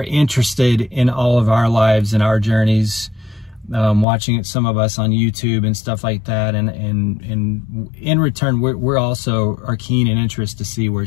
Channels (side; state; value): right; drops out; at 4.0 s